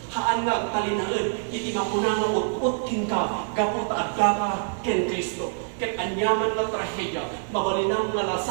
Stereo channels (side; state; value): left; silent; digital silence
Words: Haan nga talinaan, iti makuna nga utput kin ka, kaput adda ka kin Kristo. Ket anyaman nga trahedya, mabalinang nga